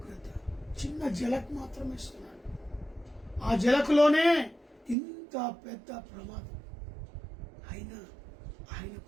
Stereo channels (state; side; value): drops out; left; at 5.0 s